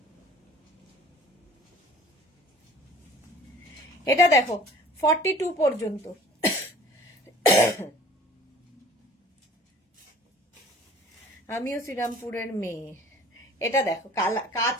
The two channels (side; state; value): both; normal; correlation 0.48